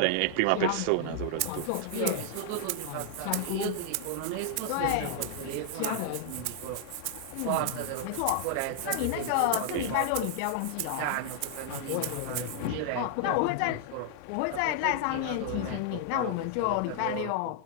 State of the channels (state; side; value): different; both; correlation -0.01